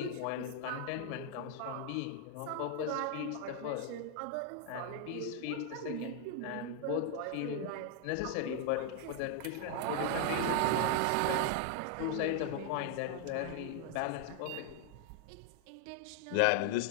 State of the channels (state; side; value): different; both; correlation 0.00